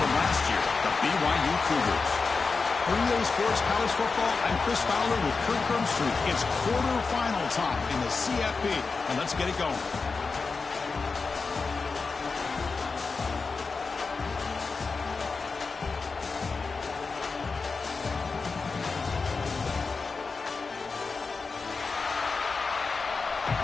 last year, the BYU Cougars. For EA Sports College Football, I'm Chris Fowler with Kirk Herbstreit. It's quarterfinal time in the CFP, and let's get it going.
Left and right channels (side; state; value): right; quieter; 4.5 dB